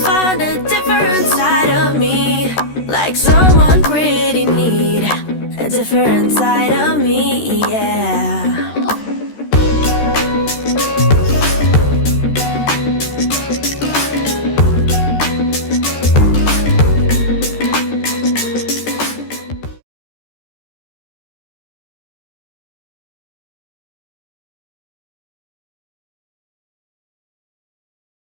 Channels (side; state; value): right; late; 13 ms